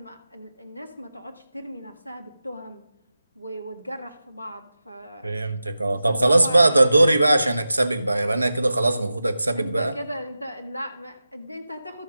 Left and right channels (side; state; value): both; inverted; correlation -0.92